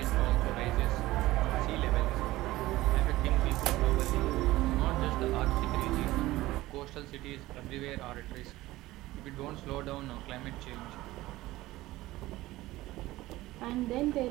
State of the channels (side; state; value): left; quieter; 17.5 dB